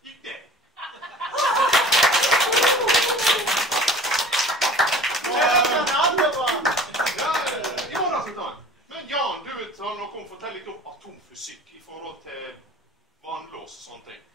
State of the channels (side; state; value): both; normal; correlation 0.44